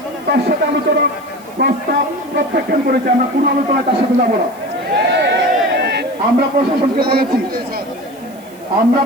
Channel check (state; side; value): noise; right; hiss, 25 dB below the sound